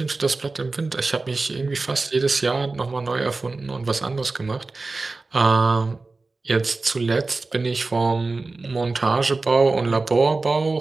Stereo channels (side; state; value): left; quieter; 3.6 dB